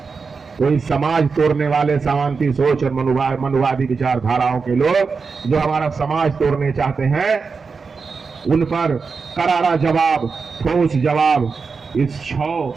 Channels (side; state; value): left; quieter; 5.0 dB